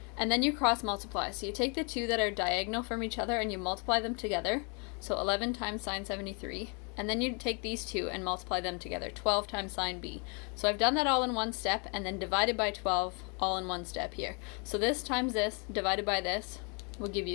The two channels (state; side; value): quieter; right; 35.2 dB